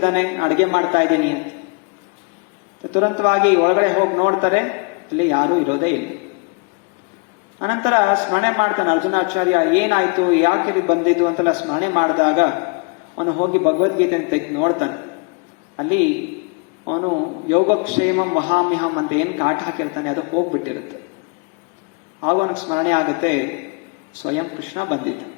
ಅಡಿಗೆ ಮಾಡ್ತಾ ಇದ್ದೀನಿ ಅಂತ. ತುರಂತವಾಗಿ ಒಳಗಡೆ ಹೋಗಿ ನೋಡ್ತಾರೆ, ಅಲ್ಲಿ ಯಾರೂ ಇರೋದೇ ಇಲ್ಲ. ಅನಂತರ ಸ್ಮರಣೆ ಮಾಡ್ತಾನೆ ಅರ್ಜುನಾಚಾರ್ಯ, ಏನಾಯ್ತು, ಯಾಕೆ ಇದು ಬಂದಿದ್ದು ಅಂತೆಲ್ಲ ಸ್ಮರಣೆ ಮಾಡಿದಾಗ ಅವನು ಹೋಗಿ ಭಗವದ್ಗೀತೆ ತೆಗೆದು ನೋಡ್ತಾನೆ. ಅಲ್ಲಿ ಅವನು ಯೋಗಕ್ಷೇಮಂ ವಹಾಮ್ಯಹಂ ಅಂತ ಏನ್ ಕಾಟ ಹಾಕಿರ್ತಾನೆ ಅದು ಹೋಗ್ಬಿಟ್ಟಿರುತ್ತೆ. ಆಗ ಅವನಿಗೆ ಸ್ಮರಣೆ ಆಗುತ್ತೆ, ಸ್ವಯಂ ಕೃಷ್ಣ ಬಂದಿದ್ದ.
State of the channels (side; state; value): right; quieter; 32.0 dB